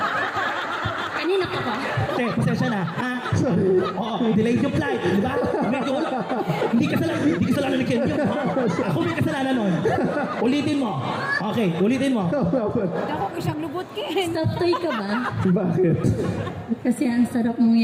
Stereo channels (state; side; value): identical; both; correlation 1.00